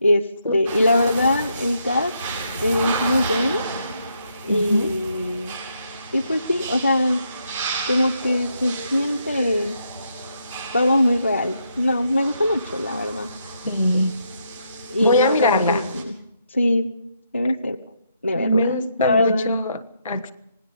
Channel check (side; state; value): both; inverted; correlation -0.77